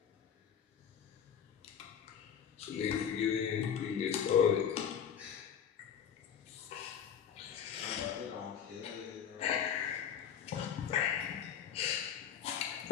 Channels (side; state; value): right; quieter; 8.3 dB